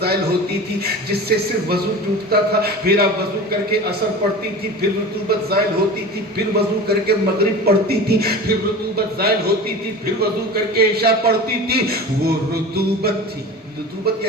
زائل ہوتی تھی جس سے صرف وضو ٹوٹتا تھا، پھر آپ وضو کر کے عصر پڑھتی تھی، پھر رطوبت زائل ہوتی تھی، پھر وضو کر کے مغرب پڑھتی تھی، پھر رطوبت زائل ہوتی تھی، پھر وضو کر کے عشاء پڑھتی تھی۔ وہ رطوبت تھی، رطوبت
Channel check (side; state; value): both; normal; correlation 0.34